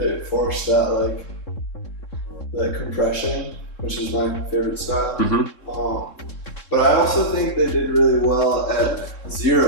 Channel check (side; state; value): right; late; 3.7 ms